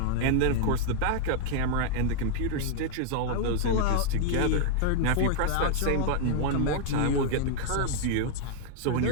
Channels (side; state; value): both; different; correlation 0.00